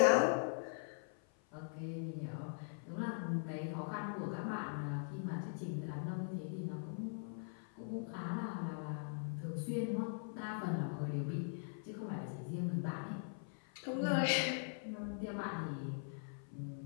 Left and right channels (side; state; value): right; silent; 50 dB below the other